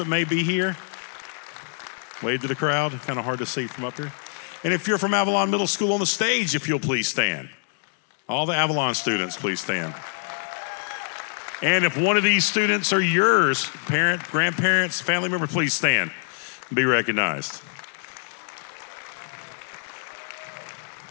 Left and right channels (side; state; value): right; silent; digital silence